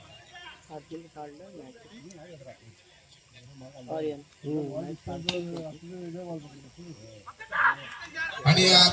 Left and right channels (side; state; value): both; identical; correlation 1.00